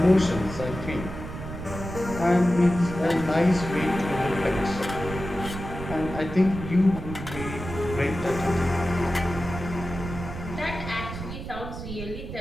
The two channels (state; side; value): noise; right; rumble, 9 dB below the sound